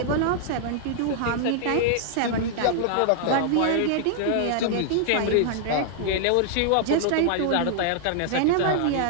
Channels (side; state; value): both; different; correlation -0.01